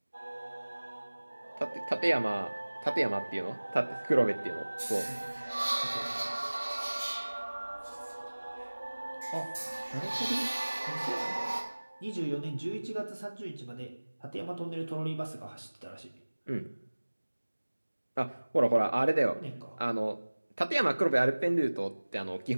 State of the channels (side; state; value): both; inverted; correlation -1.00